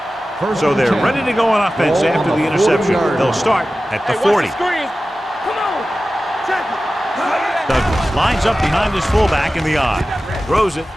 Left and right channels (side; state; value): both; normal; correlation 0.95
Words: So they're ready to go on offense after the interception. They'll start at the 40. Come on. Check it. Douglas lines up behind his fullback in the I. Throws it,